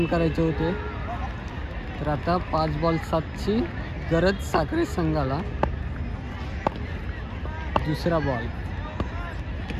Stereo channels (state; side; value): identical; both; correlation 1.00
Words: करायचे होते. तर आता 5 बॉल 7ची गरज साखरे संघाला. दुसरा बॉल